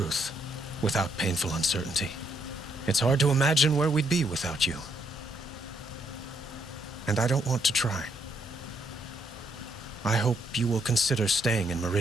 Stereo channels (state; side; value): normal; both; correlation 0.74